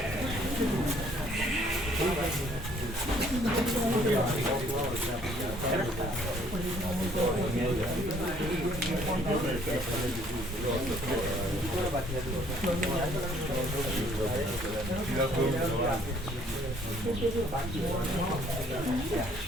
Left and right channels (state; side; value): normal; both; correlation 0.61